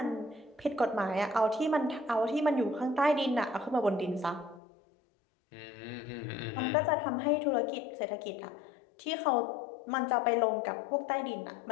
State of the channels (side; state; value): right; drops out; at 4.6 s